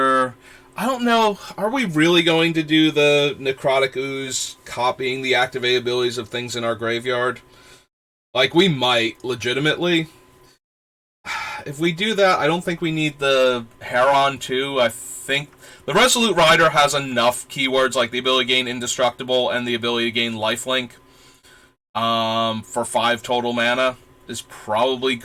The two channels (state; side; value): identical; both; correlation 1.00